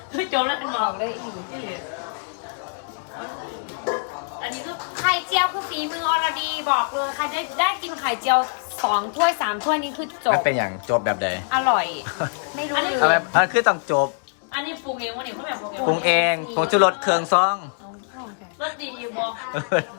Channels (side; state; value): right; silent; digital silence